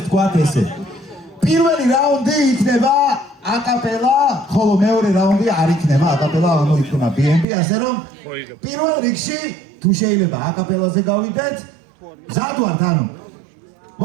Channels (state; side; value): drops out; left; at 7.5 s